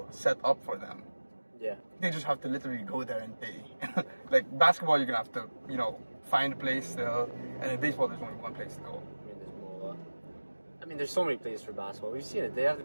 set up for them. Yeah. They just have to literally go there and pay. Like basketball, you're gonna have to, find a place still, and in baseball, there's only one place to go. I mean, there's more. I mean, there's so many places for basketball. We've seen it. They have the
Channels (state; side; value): inverted; both; correlation -1.00